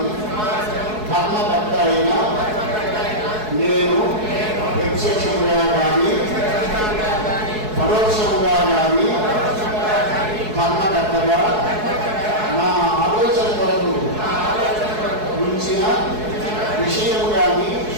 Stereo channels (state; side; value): late; left; 4.7 ms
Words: ధర్మకర్త అయిన నేను ప్రత్యక్షముగా కానీ పరోక్షముగా కానీ ధర్మకర్తగా నా ఆలోచన కొరకు ఉంచిన విషయము కానీ